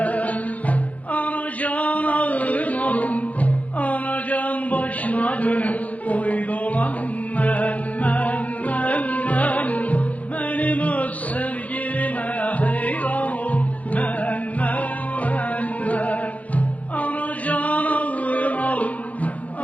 Anacan ağrım alım, anacan başına dönüp oy dolanım ben, benim öz sevgilime hayran ol ben. Anacan ağrım alım,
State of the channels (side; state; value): right; late; 0.069 ms